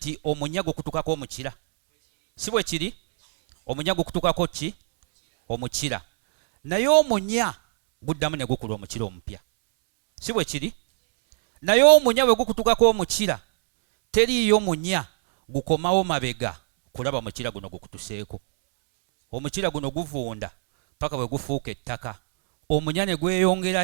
omunyago kutukako omukira? Si bwe kiri? Omunyago kutukako ki? Omukira. Naye omunya guddamu ne gukula omukira omupya. Si bwe kiri? Naye omunya bwe gukutukako omukira, teriiyo munya gukomawo mabega kulaba mukira guno gukutuseeko. Omukira guno guvunda paka bwe gufuuka ettaka. Omunya ne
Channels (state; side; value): silent; left; 63 dB below the other